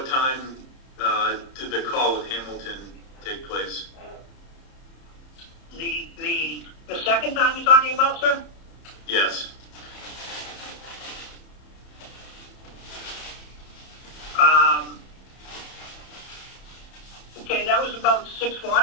time did the call with Hamilton take place? The second time you're talking about, sir? Yes. Okay, that was about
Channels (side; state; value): right; late; 30 ms